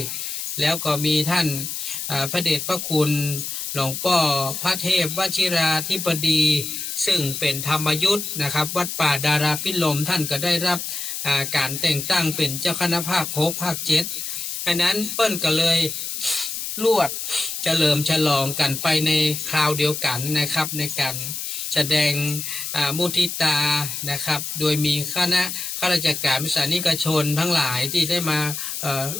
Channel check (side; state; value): left; noise; hiss, 5 dB below the sound